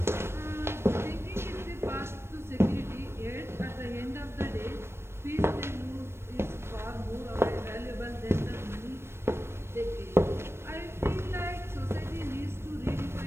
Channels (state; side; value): late; left; 0.12 ms